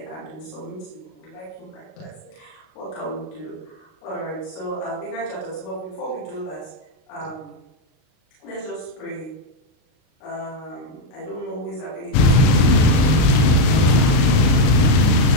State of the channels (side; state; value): right; late; 38 ms